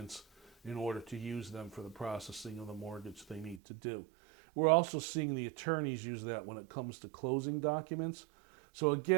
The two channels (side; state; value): left; drops out; at 3.6 s